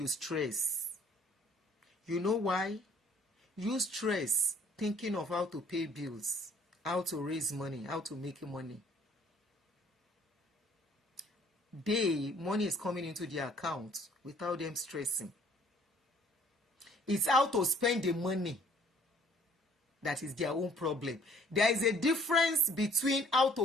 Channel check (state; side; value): normal; both; correlation 0.58